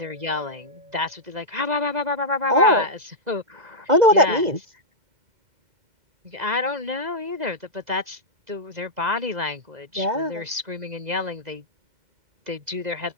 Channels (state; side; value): late; left; 2.0 ms